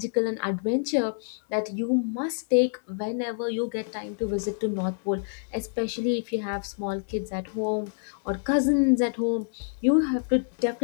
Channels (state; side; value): silent; right; digital silence